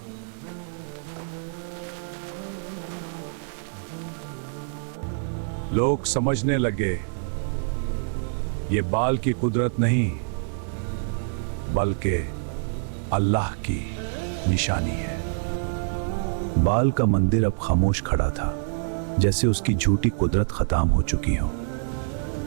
लोग समझने लगे, ये बाल की कुदरत नहीं बल्कि अल्लाह की निशानी है। बाल का मंदिर अब खामोश खड़ा था, जैसे उसकी झूठी कुदरत खत्म हो चुकी हो।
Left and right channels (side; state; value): left; silent; 61 dB below the other